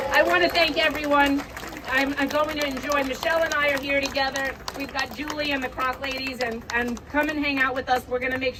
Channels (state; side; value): identical; both; correlation 1.00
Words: I want to thank everyone. I'm going to enjoy. Michelle and I are here together. We've got Julie and the Croc ladies, and come and hang out with us. We're going to make